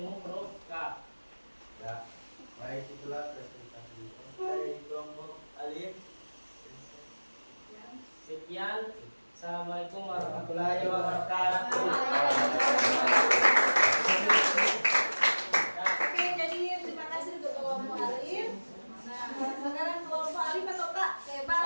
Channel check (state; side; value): inverted; both; correlation -1.00